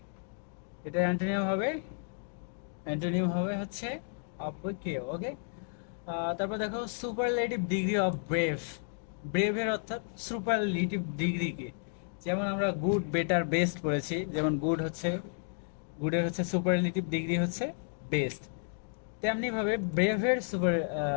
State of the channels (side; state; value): right; silent; digital silence